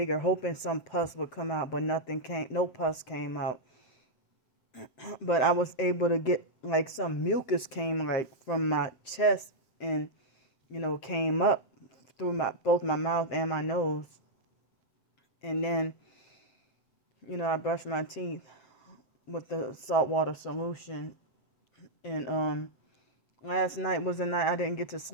hoping some pus would come out, but no pus came out. But I was able to get like some mucus came like from my chest and came up through both my mouth and my nose. And then I brushed my teeth with the saltwater solution. And last night was a night I didn't get to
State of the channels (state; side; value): late; right; 7.8 ms